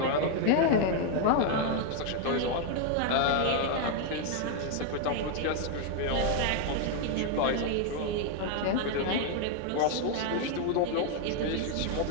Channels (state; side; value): different; both; correlation 0.00